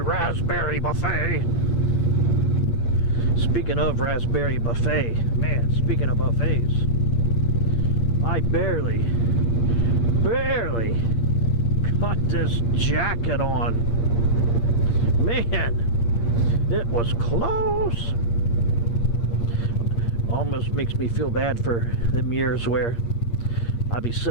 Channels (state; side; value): late; right; 8.6 ms